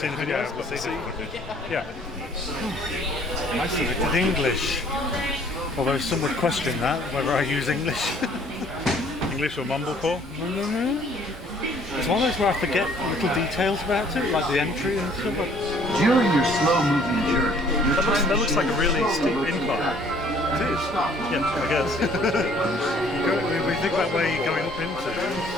in the videos, we'll but see. Yeah. I selected English. Although some would question that, whether I use English. English or mumblecore? No. It's one of those where I forget little details about it, like the entry and stuff. During your slow-moving journey, That looks like a really steep incline. It is. Yeah, I guess. We think about where you're going up into.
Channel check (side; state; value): both; normal; correlation 0.58